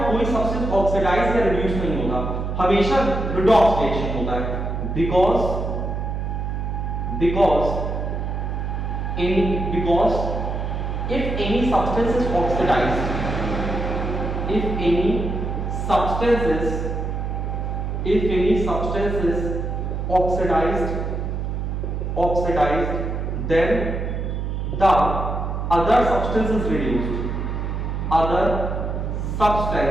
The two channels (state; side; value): noise; right; hum, 2 dB below the sound